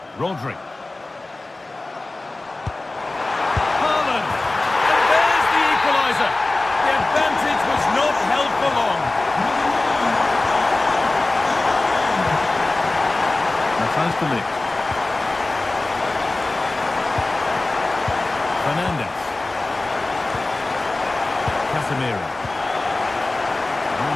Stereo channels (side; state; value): right; quieter; 3.0 dB